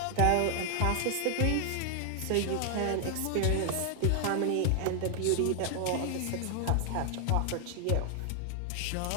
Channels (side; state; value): both; different; correlation 0.00